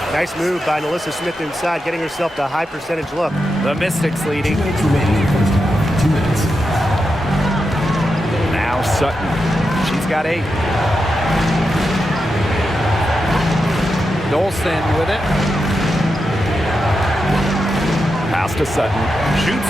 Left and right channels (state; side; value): normal; both; correlation 0.88